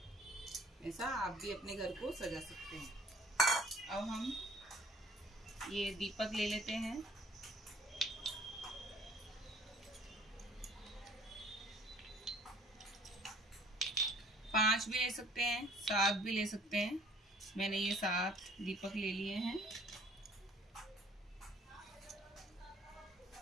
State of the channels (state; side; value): normal; both; correlation 0.55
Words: ऐसा आप भी अपने घर को सजा सकते हैं। अब हम ये दीपक ले लेते हैं। पांच भी ले सकते हैं, 7 भी ले सकते हैं। मैंने ये 7 दीपक ले लिए हैं।